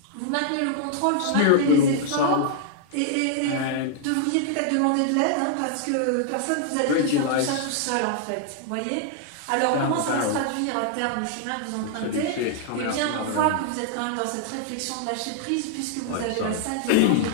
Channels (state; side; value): different; both; correlation -0.01